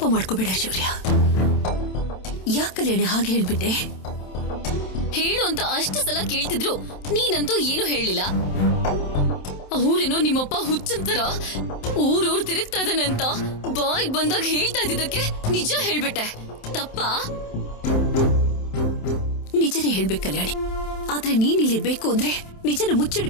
ಮಾಡ್ಕೋಬೇಡ ಶೌರ್ಯ. ಯಾಕಲ್ಲೇಣೆ ಹಾಗೆ ಹೇಳ್ಬಿಟ್ಟೆ? ಹೇಳು ಅಂತ ಅಷ್ಟು ಸಲ ಕೇಳ್ತಿದ್ರು, ನೀನಂತೂ ಏನು ಹೇಳಿಲ್ಲ. ಅವ್ರೇನೋ ನಿಮ್ಮಪ್ಪ ಹುಚ್ಚಂತರ ಊರೂರ್ ತಿರುಗ್ತಾ ಇದ್ದಾನೆ ಅಂತ ಬಾಯಿಗೆ ಬಂದಾಗ ಹೇಳ್ತಾ ಇದ್ದಿದ್ದಕ್ಕೆ ನಿಜ ಹೇಳ್ಬಿಟ್ಟೆ. ತಪ್ಪಾ? ನಿಜನೇ ಹೇಳ್ಬೇಕು ಕಲ್ಯಾಣಿ. ಆದ್ರೆ ನೀನ್ ಇಲ್ಲಿರ್ಬೇಕು ಅಂದ್ರೆ ನಿಜನ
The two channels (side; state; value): right; late; 27 ms